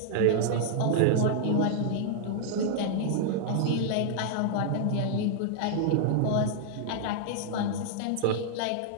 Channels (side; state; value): both; different; correlation -0.01